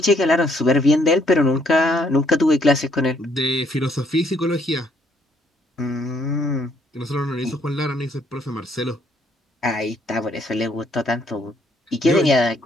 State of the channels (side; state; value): both; normal; correlation 0.68